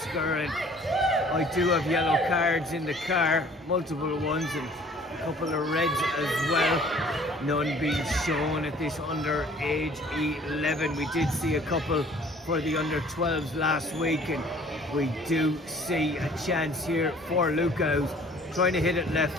and I do have yellow cards in the car, multiple ones and a couple of reds as well. None being shown at this under age 11. We did see a couple for the under 12s last week, and we do see a chance here for Luca, who's trying to hit it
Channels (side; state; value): both; normal; correlation 0.53